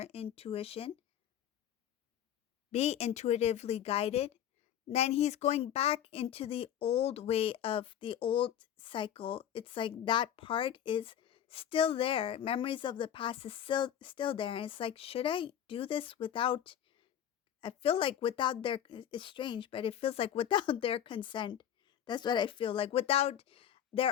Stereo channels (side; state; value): right; quieter; 10.1 dB